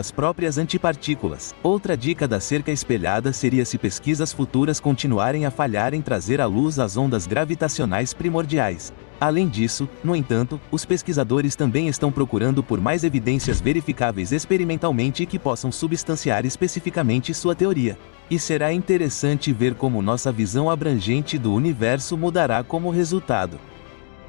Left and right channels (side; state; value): right; silent; 59 dB below the other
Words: próprias antipartículas. Outra dica da cerca espelhada seria se pesquisas futuras continuarem a falhar em trazer à luz as ondas gravitacionais primordiais. Além disso, no entanto, os pesquisadores também estão procurando por mais evidências verificáveis experimentalmente que possam substanciar especificamente sua teoria. E será interessante ver como nossa visão abrangente do universo mudará como resultado.